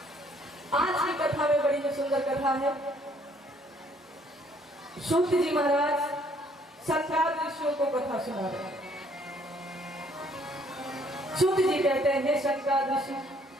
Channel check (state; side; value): normal; both; correlation 0.63